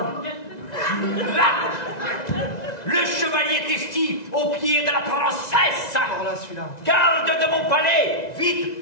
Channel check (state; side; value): late; right; 1.9 ms